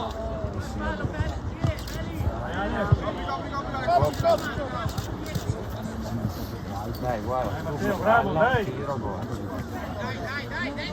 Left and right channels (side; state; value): both; identical; correlation 1.00